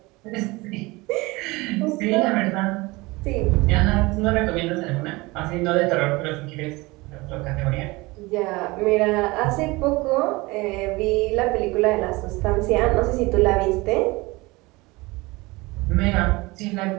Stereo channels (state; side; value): quieter; left; 22.9 dB